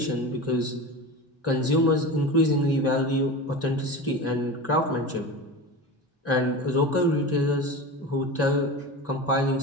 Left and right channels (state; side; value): normal; both; correlation 0.29